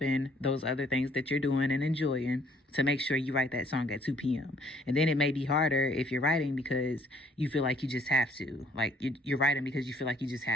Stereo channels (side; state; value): both; normal; correlation 0.62